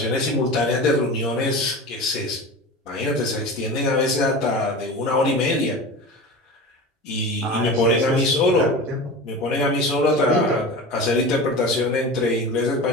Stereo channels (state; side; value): normal; both; correlation 0.31